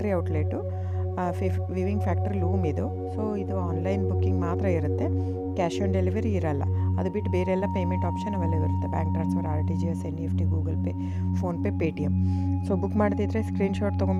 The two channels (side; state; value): both; identical; correlation 1.00